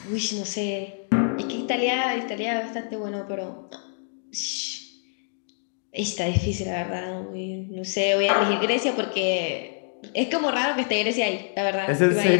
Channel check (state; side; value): silent; right; 61 dB below the other